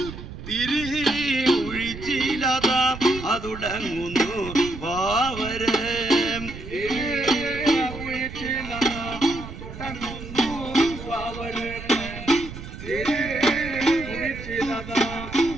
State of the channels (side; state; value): right; noise; rumble, 11 dB below the sound